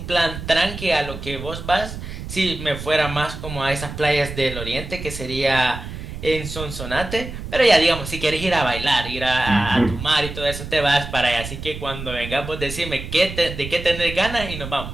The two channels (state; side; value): noise; right; rumble, 9 dB below the sound